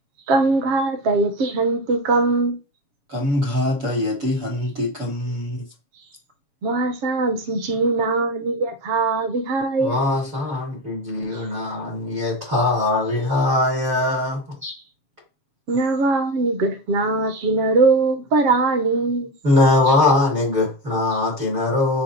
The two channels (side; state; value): left; late; 7.1 ms